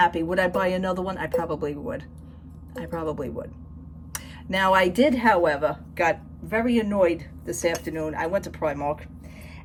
Would I buy another one? I probably would. I probably would. Now, I did, however, got very annoyed this afternoon. I went to Primark,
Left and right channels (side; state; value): both; identical; correlation 1.00